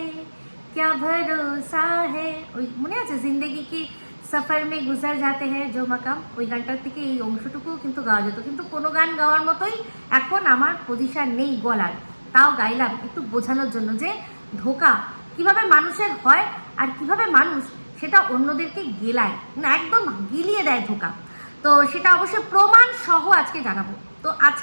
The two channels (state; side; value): inverted; both; correlation -1.00